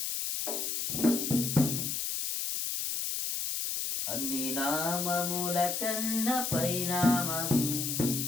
అన్ని నామముల కన్న పైనామము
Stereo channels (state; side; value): noise; left; hiss, 1 dB below the sound